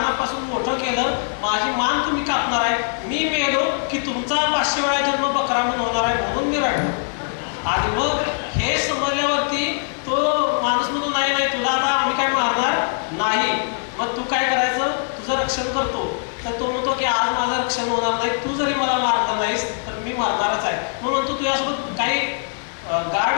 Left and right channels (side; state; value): right; silent; digital silence